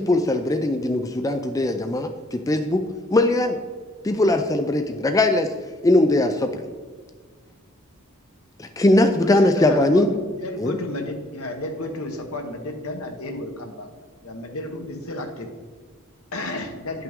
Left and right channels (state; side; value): normal; both; correlation 0.64